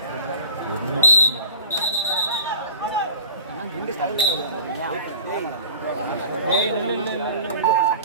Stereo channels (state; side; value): inverted; both; correlation -0.39